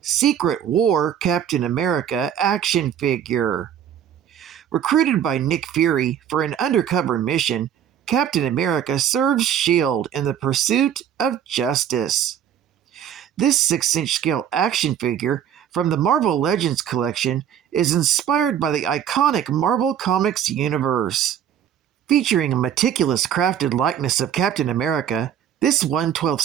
War Captain America action figure. Recruited by Nick Fury for an undercover mission, Captain America serves S.H.I.E.L.D. in the pursuit of justice. This 6-inch scale action figure from the Marvel Legends collection is inspired by the iconic Marvel Comics universe. Featuring a meticulous crafted likeness of Captain America, this 1/12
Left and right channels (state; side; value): quieter; left; 9.5 dB